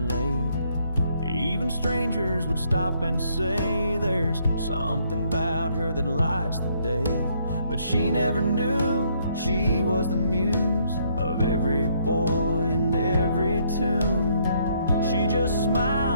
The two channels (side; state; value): both; inverted; correlation -0.69